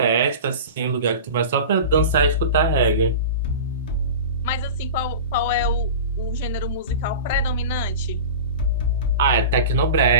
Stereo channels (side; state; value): both; inverted; correlation -0.32